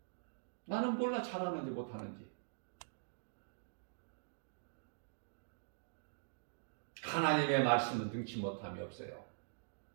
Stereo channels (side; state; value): left; silent; digital silence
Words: 나는 몰라 잘하는지 못하는지. 하나님의 말씀은 능치 못함이 없어요.